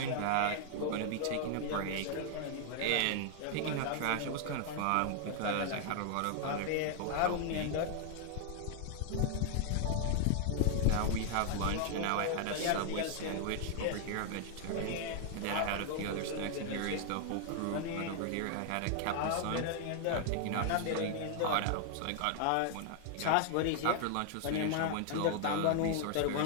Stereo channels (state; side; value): different; both; correlation 0.00